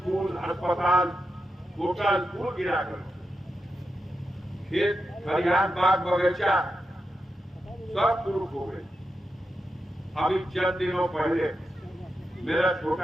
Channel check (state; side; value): normal; both; correlation 0.88